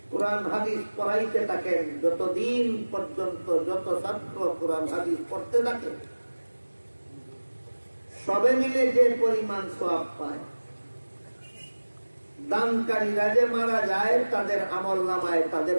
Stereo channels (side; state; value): both; inverted; correlation -1.00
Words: কোরআন হাদিস পড়াইতে থাকেন, যতদিন পর্যন্ত যত ছাত্র কোরআন হাদিস পড়তে থাকে, সবে মিলে যে পরিমাণ সওয়াব পায়, দানকারীরা যে মারা যায় তাদের আমলনামায় তাদের